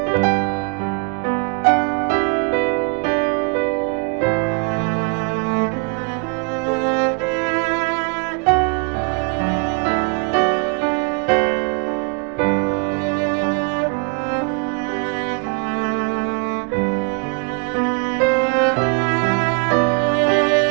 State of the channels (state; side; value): quieter; left; 35.5 dB